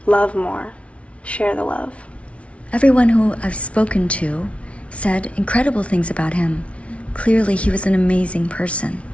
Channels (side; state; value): right; late; 0.062 ms